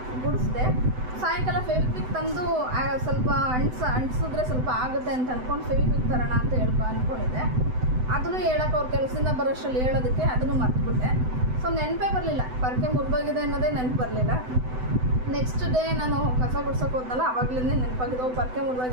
ಗುಡಿಸ್ದೆ. ಸಾಯಂಕಾಲ ಫೆವಿಕ್ವಿಕ್ ತಂದು ಸ್ವಲ್ಪ ಅಂಟಿಸಿದ್ರೆ ಸ್ವಲ್ಪ ಆಗುತ್ತೆ ಅಂತ ಅಂದ್ಕೊಂಡು ಫೆವಿಕ್ವಿಕ್ ತರೋಣ ಅಂತ ಅಂದ್ಕೊಂಡಿದ್ದೆ. ಅದನ್ನು ಹೇಳೋಕೆ ಅವ್ರ ಕೆಲಸದಿಂದ ಬರೋಷ್ಟರಲ್ಲಿ ಹೇಳೋದಕ್ಕೆ ಅದನ್ನು ಮರ್ತ್ಬಿಟ್ಟೆ. ಸೊ ನೆನಪೇ ಬರಲಿಲ್ಲ, ಪೊರ್ಕೆ ಮುರಿದೋಗಿದೆ ಅನ್ನೋದೇ ನೆನಪು ಬರಲಿಲ್ಲ. ನೆಕ್ಸ್ಟ್ ಡೇ ನಾನು ಕಸ ಗುಡ್ಸೋಕೆ ಹೋದ್ನಲ್ಲ, ಆವಾಗಲೇ ನೆನಪಾಗಿದೆ, ಪೊರ್ಕೆ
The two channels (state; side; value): late; left; 7.9 ms